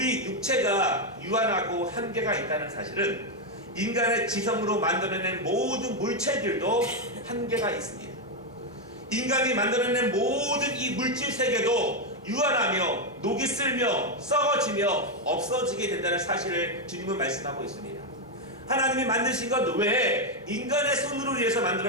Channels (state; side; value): normal; both; correlation 0.04